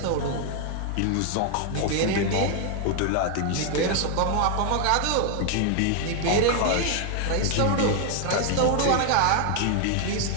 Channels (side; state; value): both; different; correlation 0.01